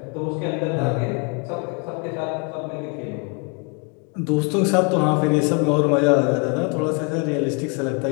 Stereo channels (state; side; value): quieter; right; 34.6 dB